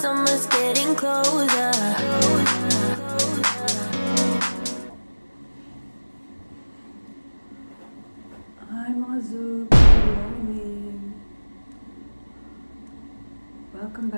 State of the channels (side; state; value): both; inverted; correlation -1.00